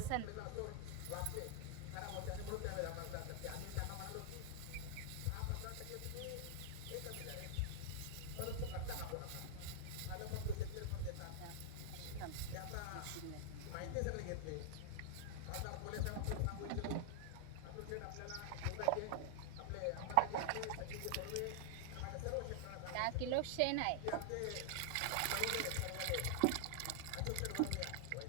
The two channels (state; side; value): different; both; correlation 0.00